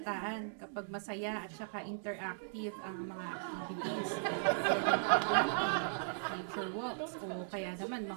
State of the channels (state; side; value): silent; left; digital silence